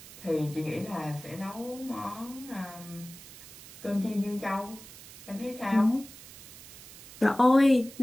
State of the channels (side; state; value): right; noise; hiss, 17 dB below the sound